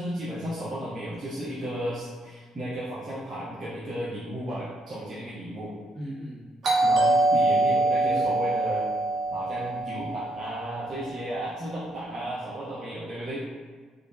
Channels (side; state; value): both; normal; correlation 0.73